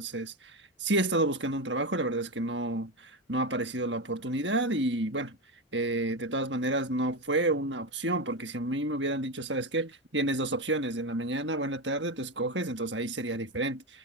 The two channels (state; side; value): normal; both; correlation 0.14